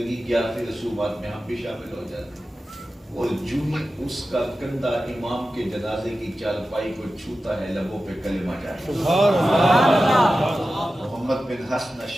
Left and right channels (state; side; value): normal; both; correlation 0.94